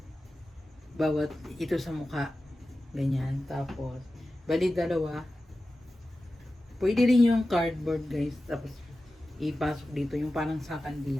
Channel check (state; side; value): normal; both; correlation 0.94